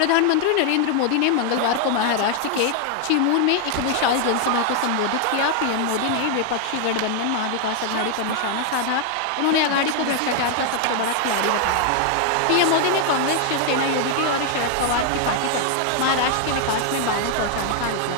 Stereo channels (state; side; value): different; both; correlation 0.00